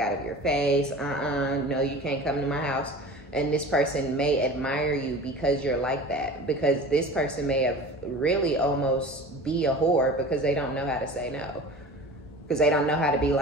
of your face. No, you can't come to my house. And this person may admire you because you're like that. Because this person may have really almost be a whore because they don't know how to say no. Because they don't know how to be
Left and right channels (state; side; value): normal; both; correlation 0.38